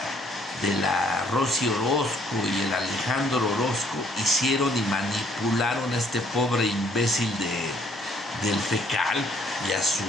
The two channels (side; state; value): both; normal; correlation 0.64